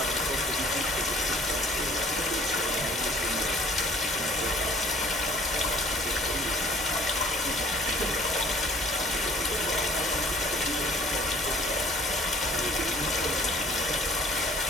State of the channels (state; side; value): normal; both; correlation 0.54